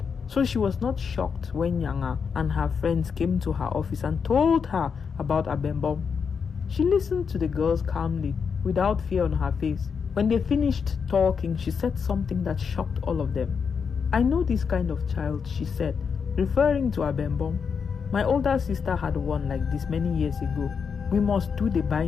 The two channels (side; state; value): right; quieter; 6.2 dB